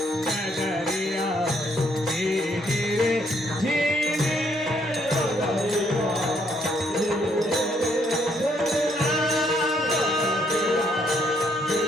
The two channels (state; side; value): normal; both; correlation 0.70